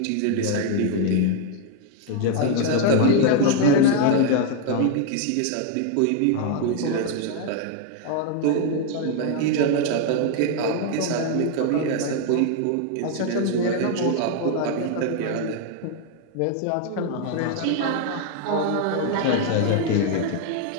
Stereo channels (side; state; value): both; different; correlation 0.00